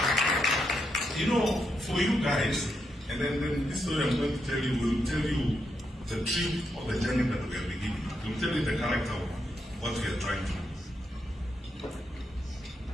For you guys, and then this story I'm going to tell you will tell you the truth of the journey that we are beginning. It will tell you the character of what we are trying to do.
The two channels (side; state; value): both; normal; correlation 0.82